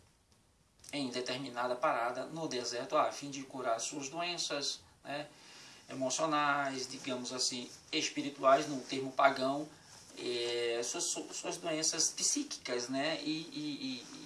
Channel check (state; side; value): identical; both; correlation 1.00